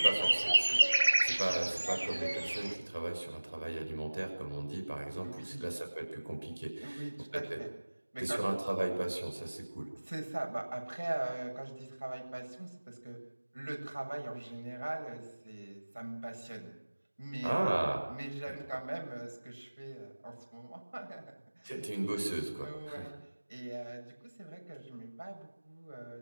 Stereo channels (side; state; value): both; inverted; correlation -1.00